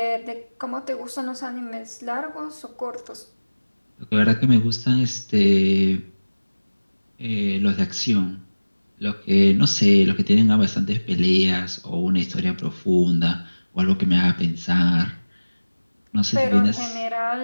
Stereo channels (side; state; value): both; inverted; correlation -1.00